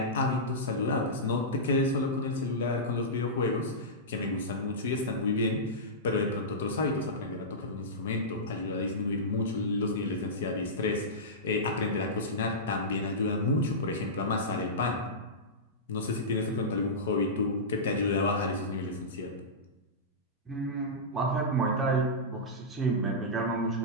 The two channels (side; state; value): both; normal; correlation -0.15